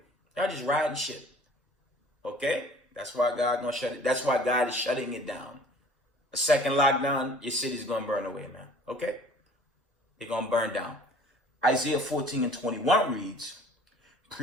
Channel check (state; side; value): normal; both; correlation 0.49